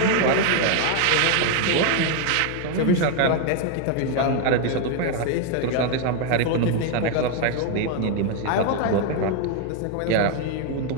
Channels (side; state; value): both; different; correlation 0.01